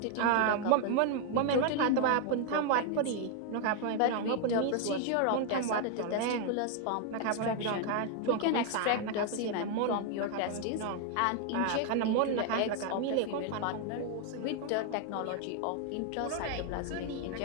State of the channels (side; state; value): both; different; correlation 0.00